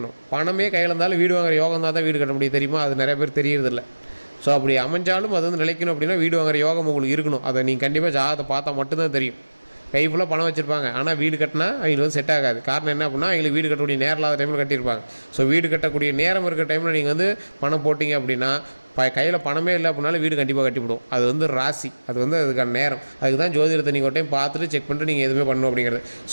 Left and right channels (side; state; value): both; inverted; correlation -1.00